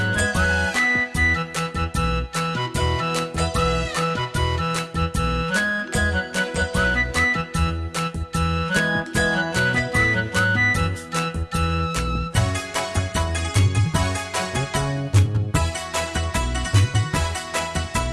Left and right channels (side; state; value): both; identical; correlation 1.00